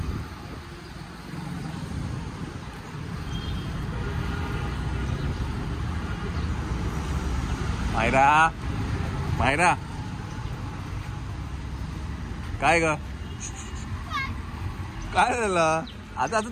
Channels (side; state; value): both; identical; correlation 1.00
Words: मायरा मायरा काय ग काय झालं आता आता